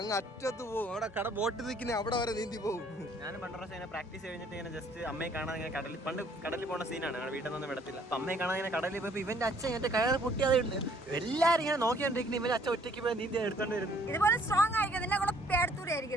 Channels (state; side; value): normal; both; correlation 0.61